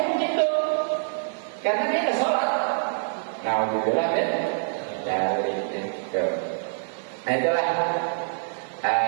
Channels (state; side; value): silent; left; 58 dB below the other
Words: begitu, karena dia ada sholat. Nah, alhamdulillah kan dari itu. Nah itulah